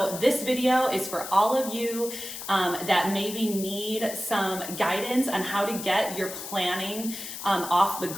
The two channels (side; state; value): left; noise; hiss, 9 dB below the sound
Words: this video is for all of you that maybe need some guidance on how to get your planning off the